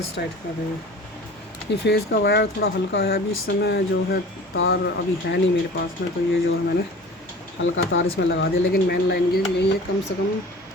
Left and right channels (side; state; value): both; normal; correlation 0.41